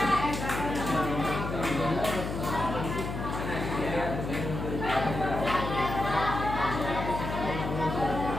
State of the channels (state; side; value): noise; left; hum, 5 dB below the sound